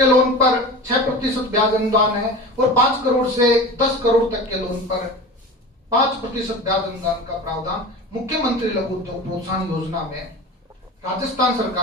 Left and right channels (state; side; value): normal; both; correlation 0.33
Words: लोन पर 6% ब्याज अनुदान है, और 5 करोड़ से 10 करोड़ तक के लोन पर 5% ब्याज अनुदान का प्रावधान मुख्यमंत्री लघु उद्योग प्रोत्साहन योजना में राजस्थान